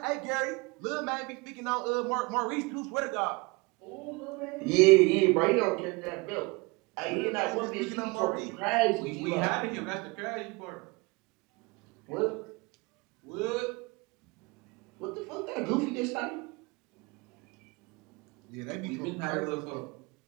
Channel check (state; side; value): quieter; left; 26.1 dB